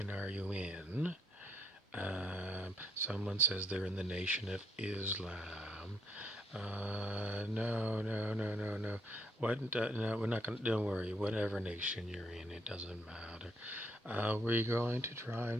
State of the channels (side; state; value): both; normal; correlation 0.72